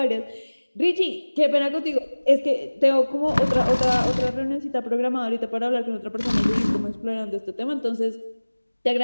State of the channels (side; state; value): both; inverted; correlation -1.00